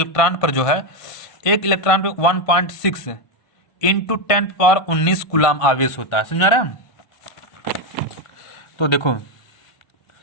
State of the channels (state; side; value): late; right; 1.5 ms